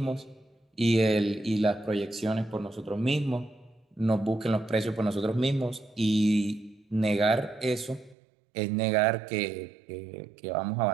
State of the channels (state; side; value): drops out; left; at 8.2 s